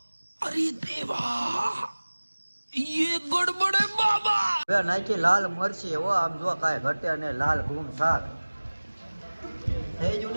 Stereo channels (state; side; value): inverted; both; correlation -1.00